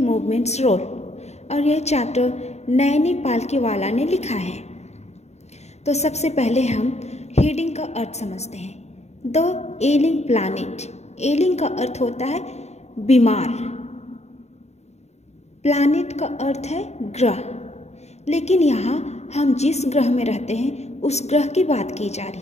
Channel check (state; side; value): late; right; 0.32 ms